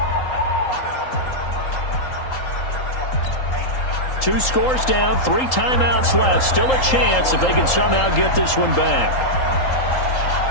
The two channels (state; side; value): late; right; 3.8 ms